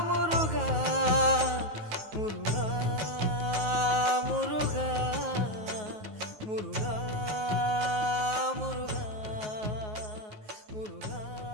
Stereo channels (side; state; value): left; late; 9.4 ms